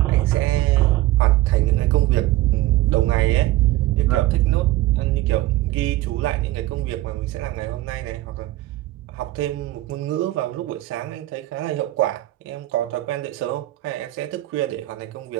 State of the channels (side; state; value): left; quieter; 16.7 dB